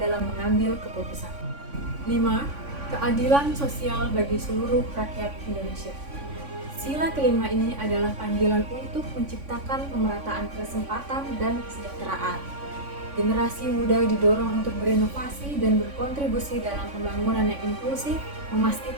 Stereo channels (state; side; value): late; left; 3.5 ms